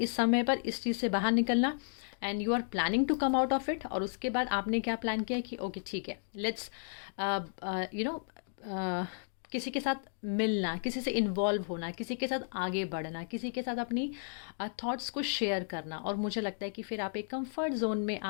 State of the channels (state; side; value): silent; right; digital silence